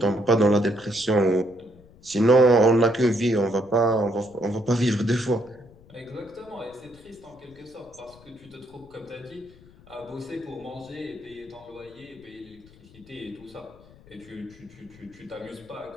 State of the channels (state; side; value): noise; left; rumble, 24 dB below the sound